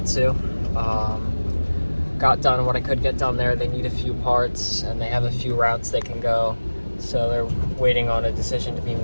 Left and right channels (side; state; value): both; inverted; correlation -1.00